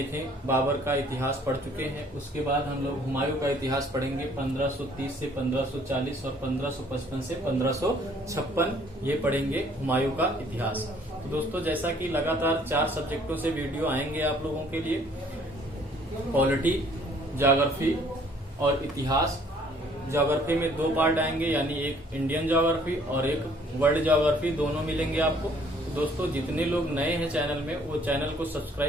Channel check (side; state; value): both; normal; correlation 0.59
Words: बाबर का इतिहास पढ़ चुके हैं। उसके बाद हम लोग हुमायूं का इतिहास पढ़ेंगे। 1530 से 1540 और 1555 से 1556 ये पढ़ेंगे हुमायूं का इतिहास। तो दोस्तों, जैसा कि लगातार 4 सब्जेक्टों से वीडियो आएंगे आप लोगों के लिए, पॉलिटी, ज्योग्राफी और इतिहास। ज्योग्राफी में 2 पार्ट आएंगे, यानी एक इंडियन ज्योग्राफी और एक वर्ल्ड ज्योग्राफी, दोनों मिलेंगे आपको। तो दोस्तों, जितने लोग नए हैं चैनल में, वो चैनल को